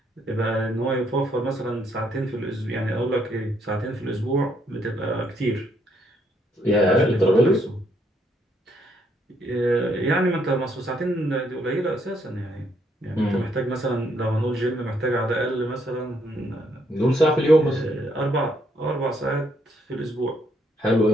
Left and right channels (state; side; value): normal; both; correlation 0.72